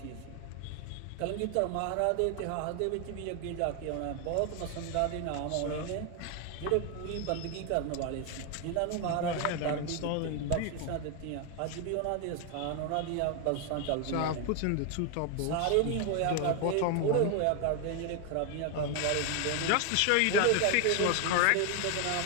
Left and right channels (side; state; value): both; different; correlation 0.01